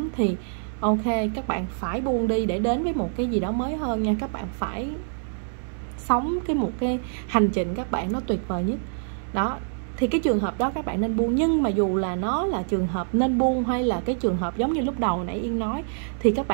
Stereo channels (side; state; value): left; silent; digital silence